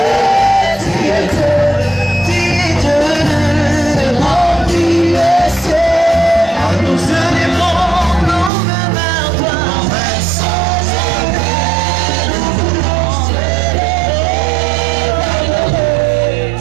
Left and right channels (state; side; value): drops out; left; at 8.5 s